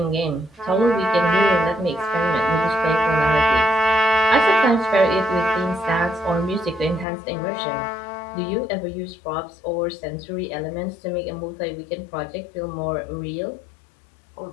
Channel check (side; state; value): right; drops out; at 7.1 s